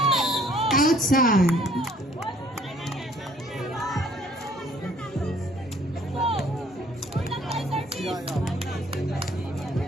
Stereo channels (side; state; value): both; normal; correlation 0.59